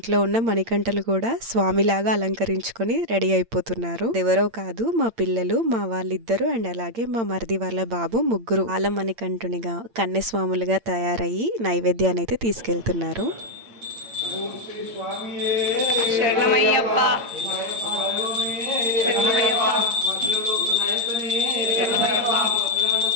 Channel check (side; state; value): left; late; 8.8 ms